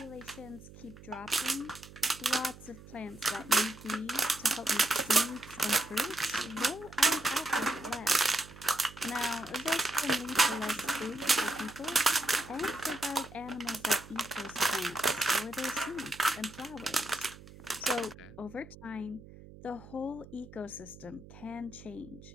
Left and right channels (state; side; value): noise; right; hum, 18 dB below the sound